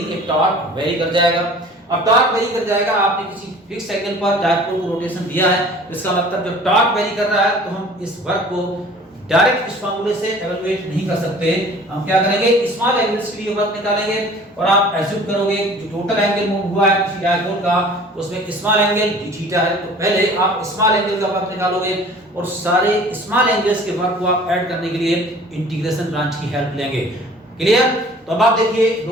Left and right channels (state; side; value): normal; both; correlation 0.47